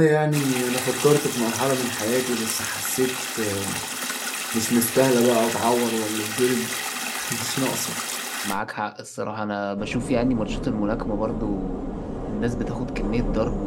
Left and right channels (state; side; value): identical; both; correlation 1.00